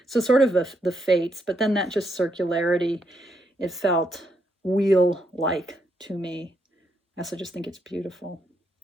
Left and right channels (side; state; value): both; normal; correlation 0.77